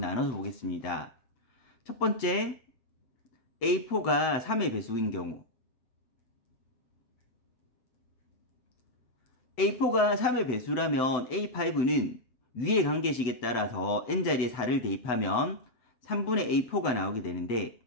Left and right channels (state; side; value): late; right; 8.0 ms